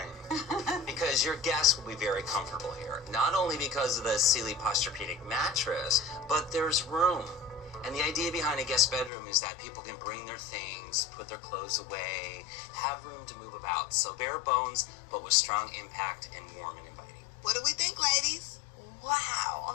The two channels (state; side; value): drops out; right; at 9.1 s